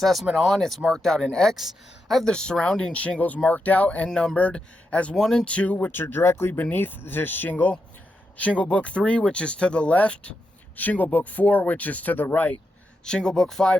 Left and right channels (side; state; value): both; normal; correlation 0.85